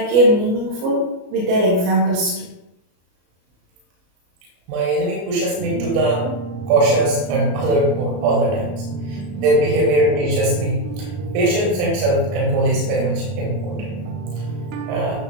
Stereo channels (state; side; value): late; left; 33 ms